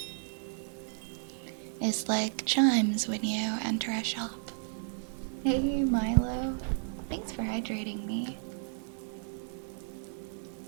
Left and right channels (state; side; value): silent; left; digital silence